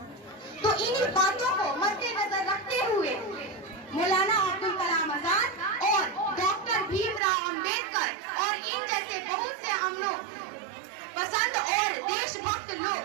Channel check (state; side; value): drops out; left; at 7.2 s